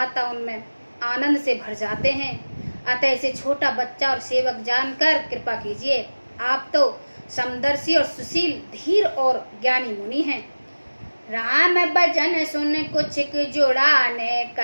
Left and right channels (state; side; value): inverted; both; correlation -1.00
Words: उनमें आनंद से भर जाते हैं। अतः इसे छोटा बच्चा और सेवक जानकर कृपा कीजिए। आप तो समदर्शी और सुशील, धीर और ज्ञानी मुनि हैं। राम भजन सुन कुछ जुड़ाने,